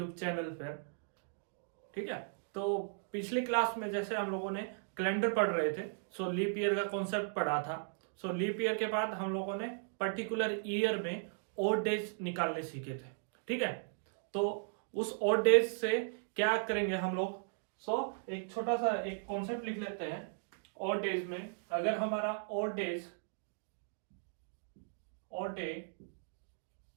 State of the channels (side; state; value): left; silent; digital silence